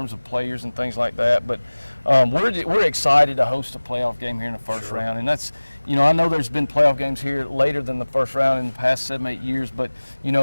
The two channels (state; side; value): inverted; both; correlation -1.00